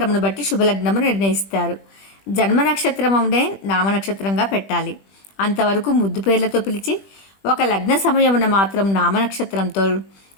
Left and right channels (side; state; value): right; late; 20 ms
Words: బట్టి శుభలగ్నము నిర్ణయిస్తారు. జన్మనక్షత్రమునే నామనక్షత్రంగా పెట్టాలి. అంతవరకు ముద్దు పేర్లతో పిలిచి ఒక లగ్న సమయమున మాత్రం నామనక్షత్రంతో